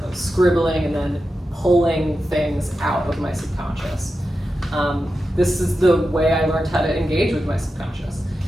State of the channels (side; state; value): both; normal; correlation 0.91